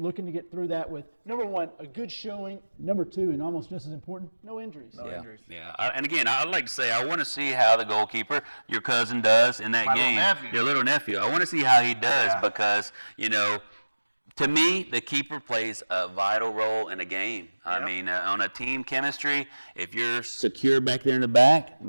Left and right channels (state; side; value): inverted; both; correlation -1.00